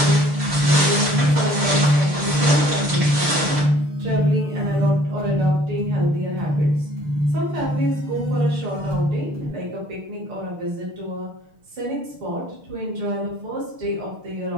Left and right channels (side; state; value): left; late; 6.6 ms